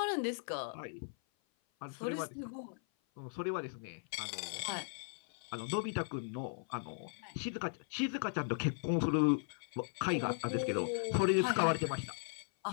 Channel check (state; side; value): silent; right; 53 dB below the other